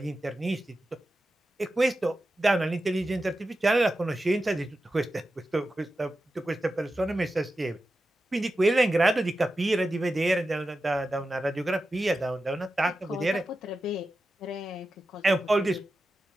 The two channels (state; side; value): normal; both; correlation 0.92